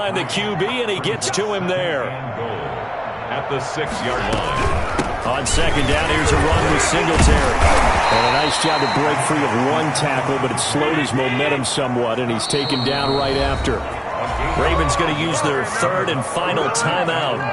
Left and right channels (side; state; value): both; identical; correlation 1.00